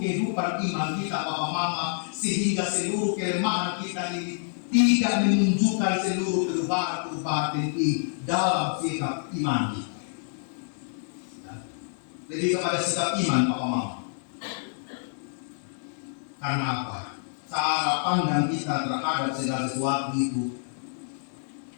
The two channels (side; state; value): right; silent; digital silence